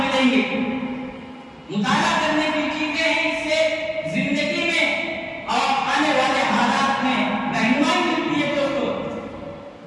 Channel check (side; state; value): both; identical; correlation 1.00